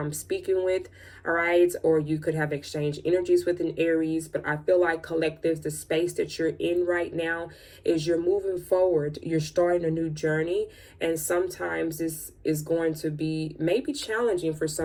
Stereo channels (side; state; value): both; identical; correlation 1.00